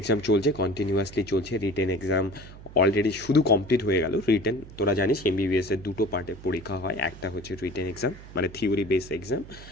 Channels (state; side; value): noise; right; hum, 17 dB below the sound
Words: চলছে, কন্টিনিউয়াসলি চলছে। রিটেন এক্সাম অলরেডি শুধু কমপ্লিট হয়ে গেল। রিটেন তোরা জানিস MBBS-এর দুটো পার্টে পরীক্ষা হয়, একটা হচ্ছে রিটেন এক্সাম মানে থিওরি বেস এক্সাম,